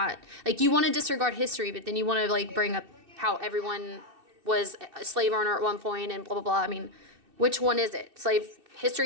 like, you want to disregard history, but then you want to, like, bring up how everyone was a slave owner at one point and blah, blah, blah. I mean, which one is it? Slave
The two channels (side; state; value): left; late; 2.6 ms